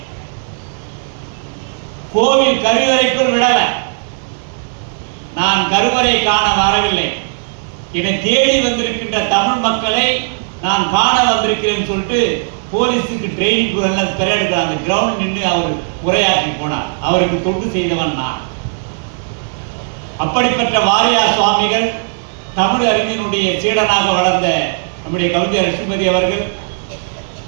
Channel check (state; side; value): silent; left; digital silence